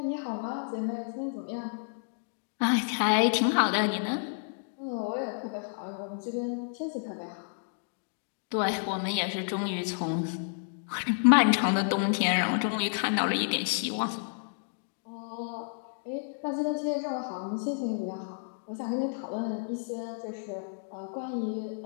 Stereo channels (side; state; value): right; silent; digital silence